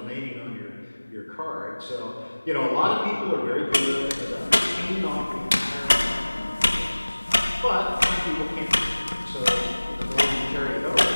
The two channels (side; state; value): both; inverted; correlation -1.00